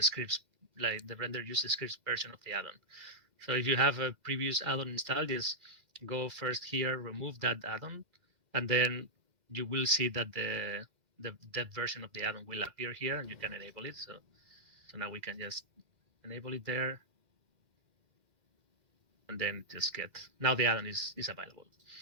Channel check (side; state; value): left; late; 2.1 ms